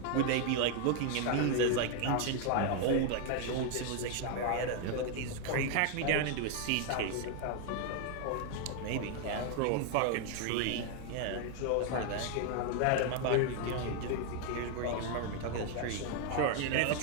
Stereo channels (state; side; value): different; both; correlation 0.00